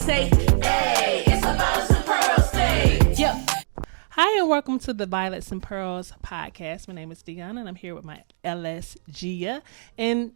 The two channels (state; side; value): silent; left; digital silence